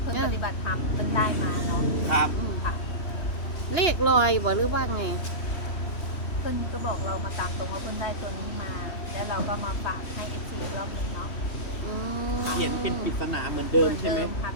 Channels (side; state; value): right; late; 3.1 ms